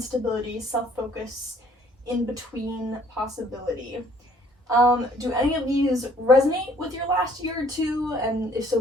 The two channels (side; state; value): both; normal; correlation 0.60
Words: self-focus, in-between, possibility. Do any of these resonate with your last year or two? And if so,